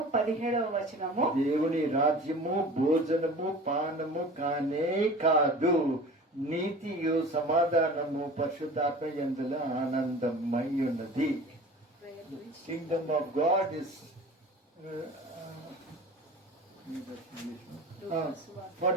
17వ వచనము. దేవుని రాజ్యము భోజనము పానము కానే కాదు, నీతియు సమాధానము పరిశుద్ధాత్మ యందుల ఆనందమై ఉన్నది. Kingdom of God is for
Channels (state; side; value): normal; both; correlation 0.40